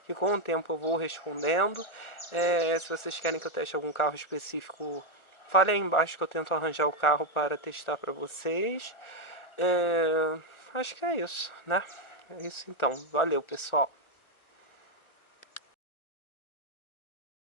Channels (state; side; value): late; right; 1.3 ms